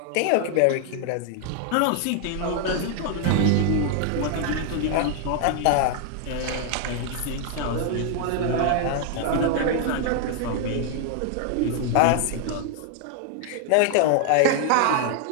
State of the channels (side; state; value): both; different; correlation 0.00